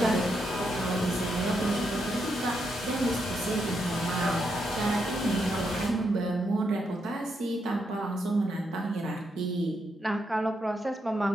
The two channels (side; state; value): both; normal; correlation 0.81